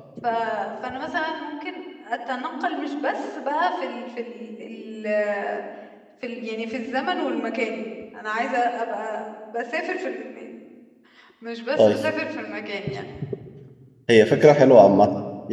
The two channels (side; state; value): both; identical; correlation 1.00